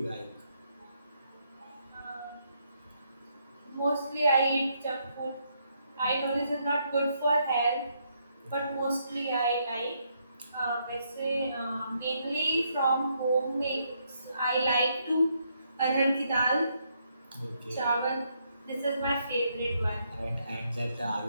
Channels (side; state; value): both; inverted; correlation -0.75